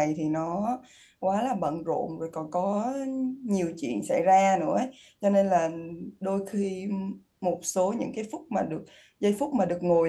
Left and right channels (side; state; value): both; identical; correlation 1.00